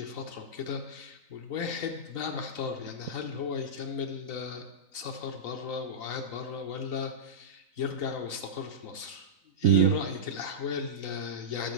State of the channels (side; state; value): left; late; 3.9 ms